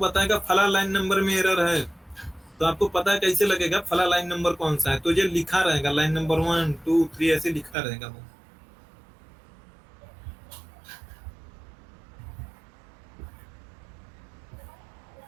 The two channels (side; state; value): left; drops out; at 7.8 s